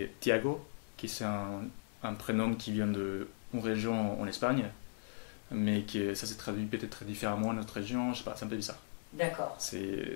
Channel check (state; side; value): silent; right; digital silence